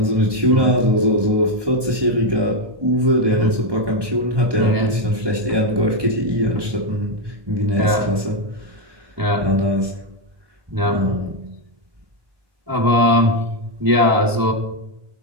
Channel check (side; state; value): left; late; 1.2 ms